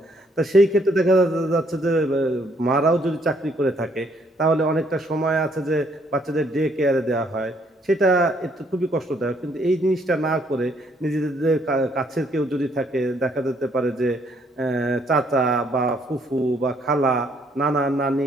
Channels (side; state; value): both; normal; correlation 0.68